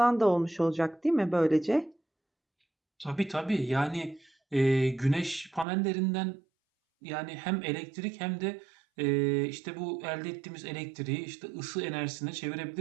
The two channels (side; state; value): left; drops out; at 5.7 s